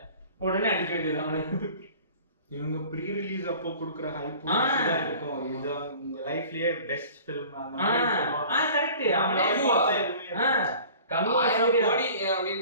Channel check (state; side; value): inverted; both; correlation -0.45